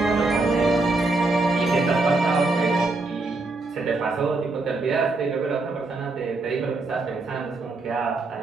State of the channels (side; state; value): left; quieter; 3.3 dB